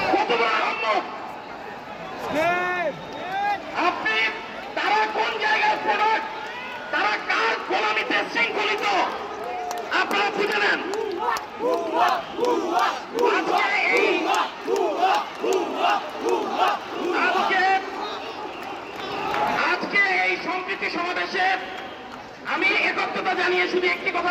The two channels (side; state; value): both; identical; correlation 1.00